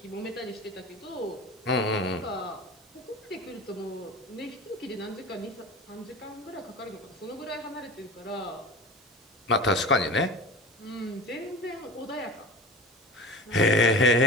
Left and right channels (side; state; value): both; normal; correlation 0.34